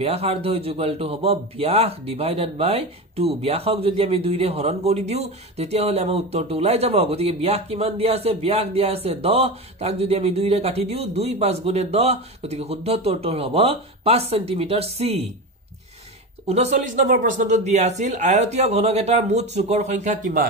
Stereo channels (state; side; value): normal; both; correlation 0.22